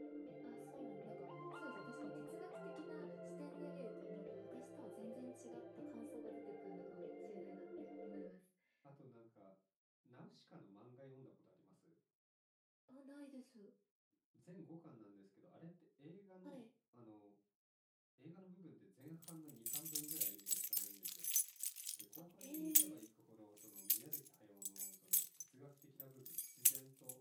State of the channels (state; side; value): identical; both; correlation 1.00